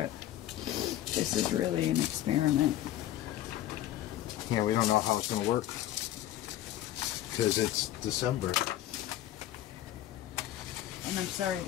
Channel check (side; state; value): right; quieter; 13.2 dB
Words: this is really an experiment. Yeah, we don't know how it's going to work because it's December. And I'm sorry